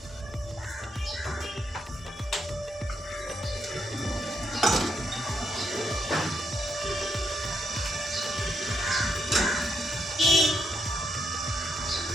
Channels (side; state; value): both; normal; correlation 0.78